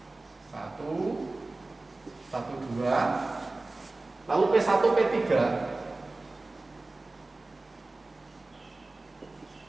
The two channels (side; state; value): left; quieter; 3.1 dB